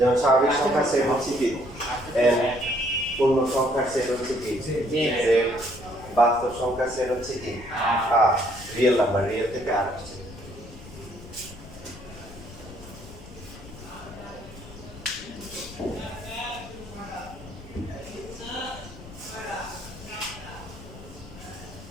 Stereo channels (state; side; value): noise; left; rumble, 16 dB below the sound